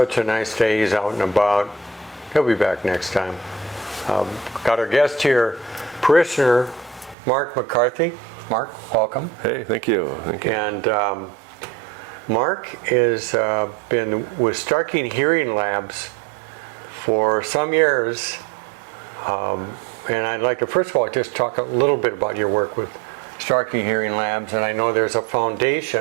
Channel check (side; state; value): left; drops out; at 7.2 s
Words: a nice day, he's out and about. He'll be back next time. Got our guest here, Parishioner Mark McCarthy. Mark, welcome. Hey, thank you. Thank you. And Mark has been with Starkey Hearing Labs for some years. And I'd like to first of all just talk a little bit about your work with Starkey Hearing Labs, and I know there's a